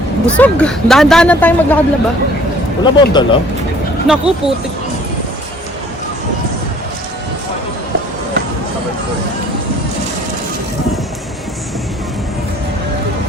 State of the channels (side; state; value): both; normal; correlation 0.55